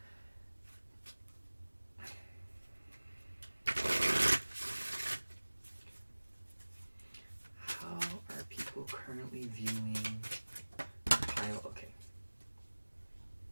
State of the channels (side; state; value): both; inverted; correlation -1.00